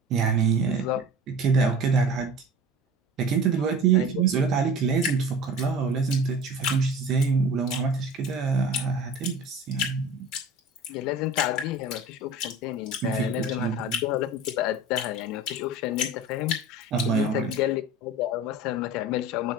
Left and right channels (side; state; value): both; normal; correlation 0.38